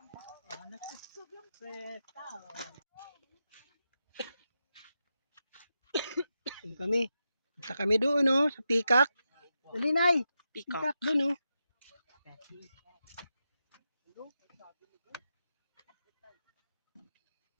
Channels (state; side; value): inverted; both; correlation -0.88